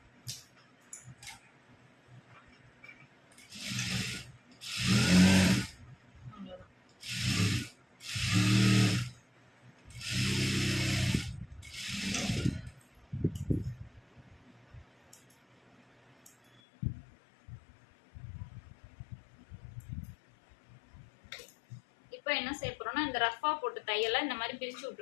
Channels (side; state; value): right; drops out; at 16.6 s